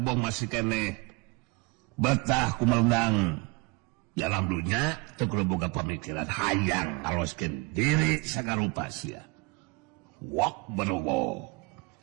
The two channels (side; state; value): left; quieter; 27.9 dB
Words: masih keneh betah kumeundang dalam dunya teu kudu boga pamikiran hayang ngaloskeun diri sagarupa sia. Wok berwok.